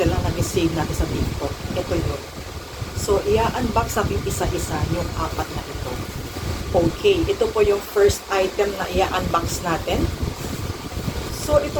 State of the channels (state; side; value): identical; both; correlation 1.00